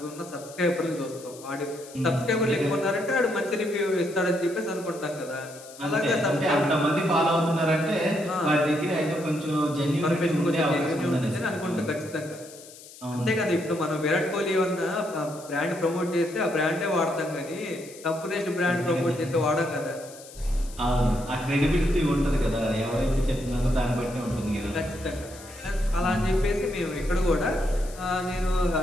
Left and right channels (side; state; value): left; noise; hiss, 18 dB below the sound